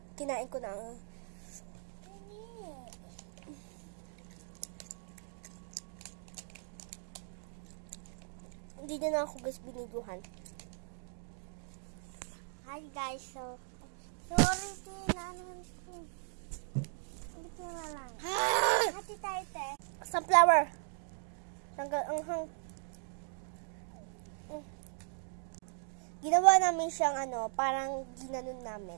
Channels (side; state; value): left; silent; digital silence